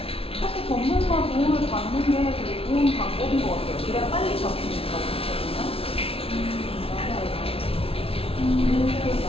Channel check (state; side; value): late; right; 0.27 ms